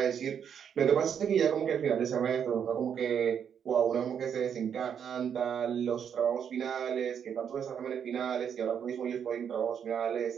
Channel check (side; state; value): left; quieter; 8.0 dB